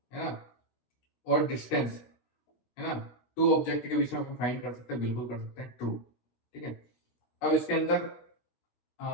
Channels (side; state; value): right; late; 16 ms